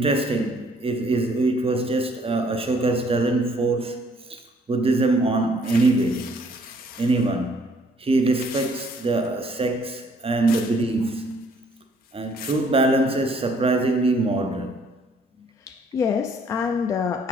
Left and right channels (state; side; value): normal; both; correlation 0.63